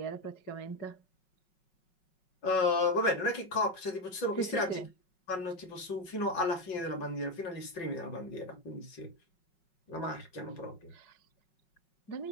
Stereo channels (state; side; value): late; right; 5.4 ms